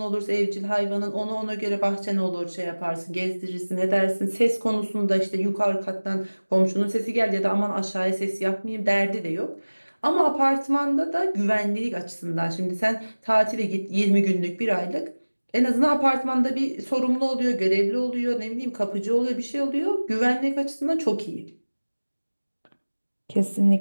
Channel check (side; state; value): both; inverted; correlation -1.00